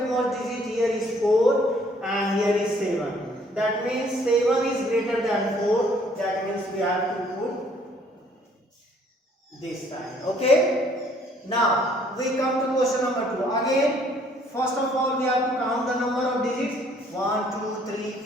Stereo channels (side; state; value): both; normal; correlation 0.61